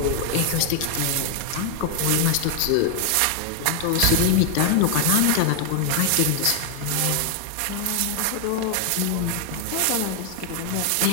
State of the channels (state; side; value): different; both; correlation 0.00